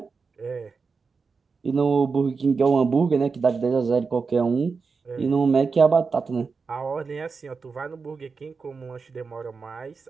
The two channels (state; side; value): quieter; left; 4.9 dB